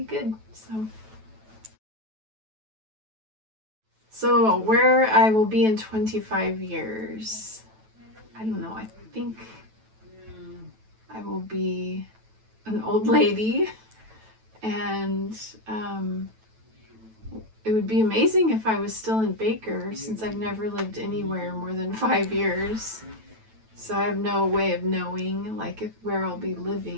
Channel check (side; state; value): left; late; 9.1 ms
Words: good. So where I will be in 25 years, I don't know. I think I will be an old lady, and it would be amazing if I was still in Baker, since I've never lived anywhere more than 5 years. So I have no way of knowing where I'll be